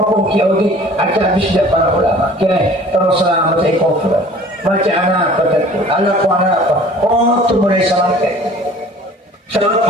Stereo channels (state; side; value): normal; both; correlation 0.48